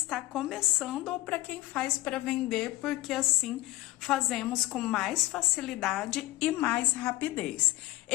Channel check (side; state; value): right; quieter; 18.5 dB